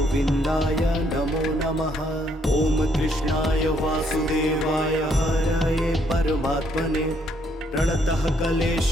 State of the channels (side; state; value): both; normal; correlation 0.70